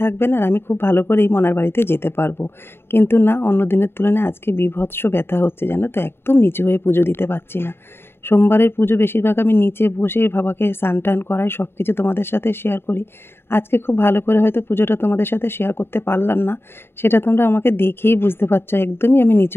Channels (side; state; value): right; late; 0.11 ms